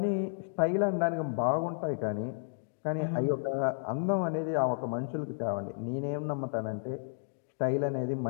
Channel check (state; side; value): silent; right; digital silence